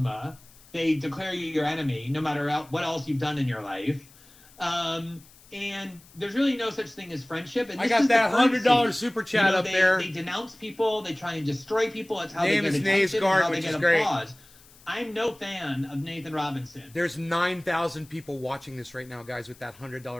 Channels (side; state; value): left; noise; hiss, 25 dB below the sound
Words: they declare you your enemy, no matter what else you've done in your life. And there's really no such thing as friendship. And I got that $100 super chat up there. They denounce people. They try and destroy people. That's how Name they get is attention, Naysgard, how they which get is great. applause. I'm no fan of Nathan Robinson. There's 9,000 people watching this right now, guys, with that